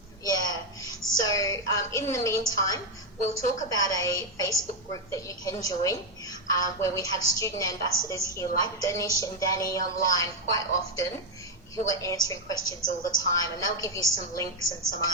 Yeah. So in the meantime, we'll talk about a Facebook group that you can join, where we have student ambassadors here like Danish and Danny online quite often, who are answering questions all the time, and they'll give you some links and some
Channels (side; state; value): both; normal; correlation 0.04